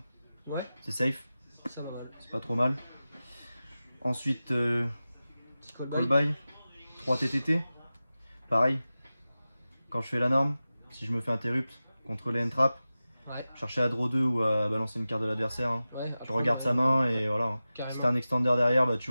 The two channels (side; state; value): both; inverted; correlation -0.95